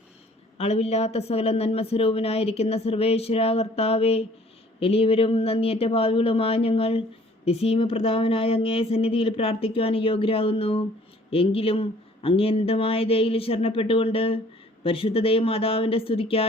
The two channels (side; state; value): both; normal; correlation 0.56